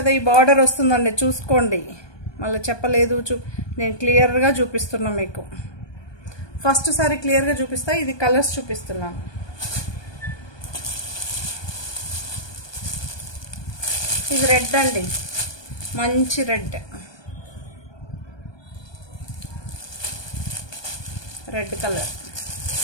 ఈ బార్డర్ వస్తుందండి, చూసుకోండి. మళ్ళీ చెప్పలేదు, నేను క్లియర్గా చూపిస్తున్నా మీకు. ఫస్ట్ సారి క్లియర్గా చూపిస్తా. ఇది కలర్స్ చూపిస్తున్నాను. ఇది రెడ్ అండి, మంచి రెడ్. Red colour.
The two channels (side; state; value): right; late; 1.2 ms